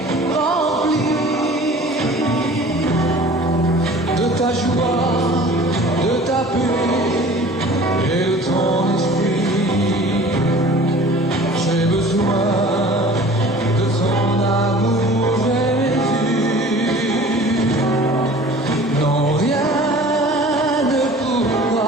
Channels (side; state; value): both; normal; correlation 0.45